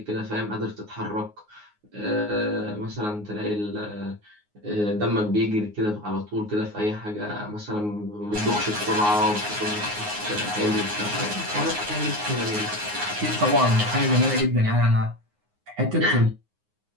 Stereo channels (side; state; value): left; late; 9.6 ms